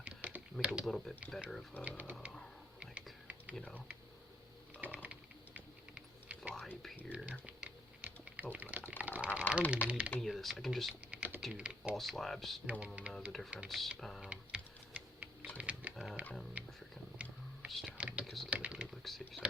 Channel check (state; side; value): normal; both; correlation 0.68